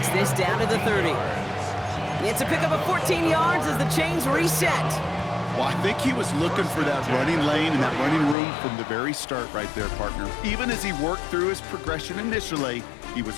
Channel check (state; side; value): drops out; right; at 8.3 s